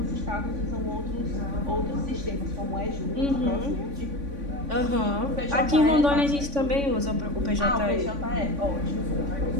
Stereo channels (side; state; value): left; late; 3.5 ms